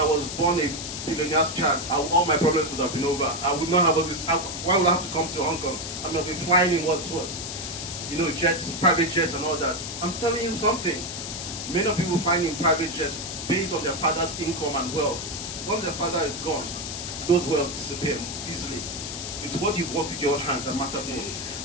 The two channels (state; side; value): noise; left; hiss, 6 dB below the sound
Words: was born a billionaire's child. All my problems would have been over. I would not have all this. Why would I have to come to Hong Kong? I mean, I'll be flying in what? Jets, private jets and all that. I'm telling you something. Many people flying in private jets based on their father's income and wealth. Once their father is gone, those wealth disappear easily. It's what you've worked with your own hands that matter most.